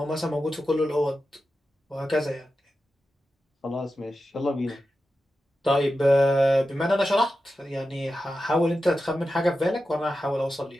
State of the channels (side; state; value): both; normal; correlation 0.91